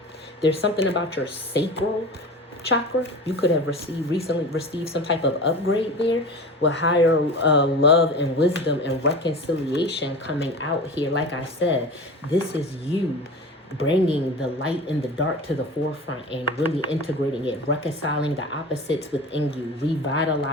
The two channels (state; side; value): normal; both; correlation 0.33